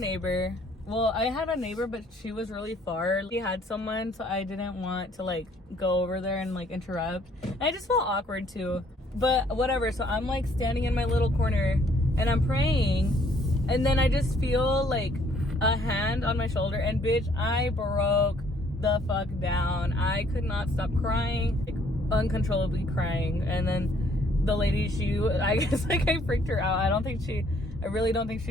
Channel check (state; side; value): normal; both; correlation 0.63